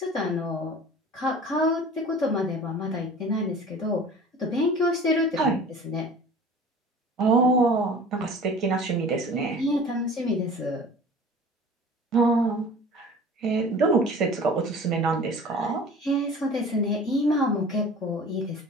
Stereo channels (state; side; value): normal; both; correlation 0.42